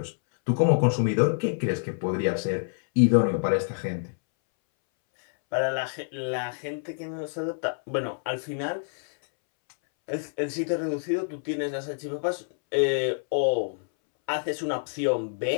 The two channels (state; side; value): silent; right; 60 dB below the other